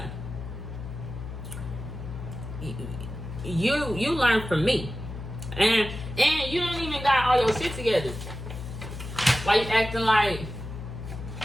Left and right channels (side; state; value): left; noise; hum, 9 dB below the sound